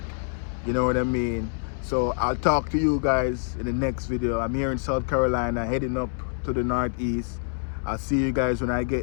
You know what I mean? So I'll talk to you guys in the next video. I'm here in South Carolina, heading up to the northeast. I'll see you guys when I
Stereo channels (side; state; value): right; silent; 61 dB below the other